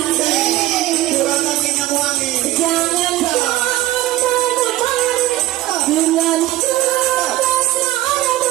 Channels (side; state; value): left; quieter; 16.0 dB